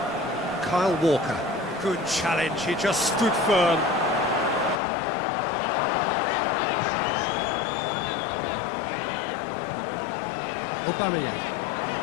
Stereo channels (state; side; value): drops out; right; at 4.8 s